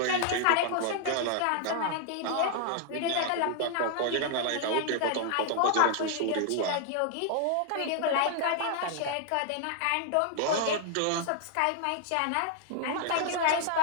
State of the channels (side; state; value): both; different; correlation 0.00